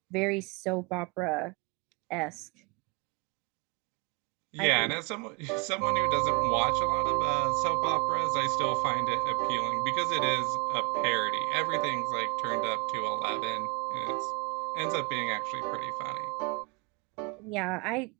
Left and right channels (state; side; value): quieter; left; 31.3 dB